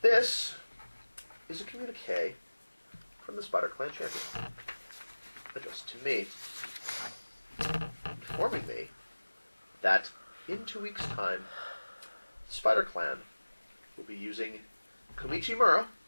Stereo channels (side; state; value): both; inverted; correlation -1.00